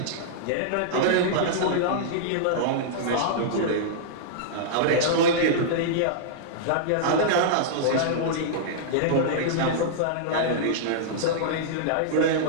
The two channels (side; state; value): both; different; correlation -0.02